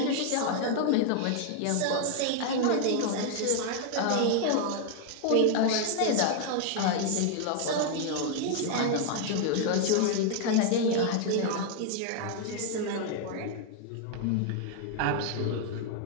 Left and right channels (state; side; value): different; both; correlation 0.00